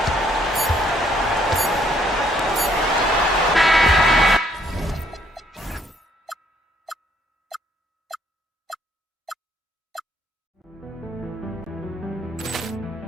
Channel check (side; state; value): both; normal; correlation 0.67